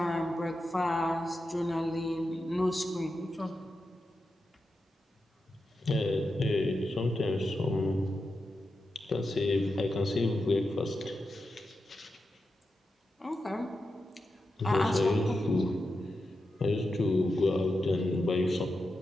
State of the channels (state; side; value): normal; both; correlation 0.89